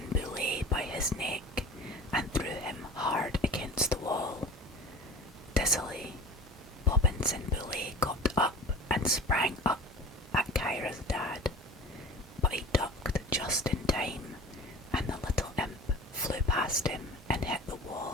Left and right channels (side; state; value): both; normal; correlation 0.39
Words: Boulet by his neck, and threw him hard against the wall. Dizzily, Bobbins and Boulet got up and sprang up at Kyra's dad, but he ducked just in time, and the little imp flew past him and hit the